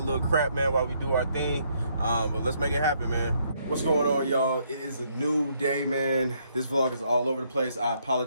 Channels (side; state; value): both; inverted; correlation -0.71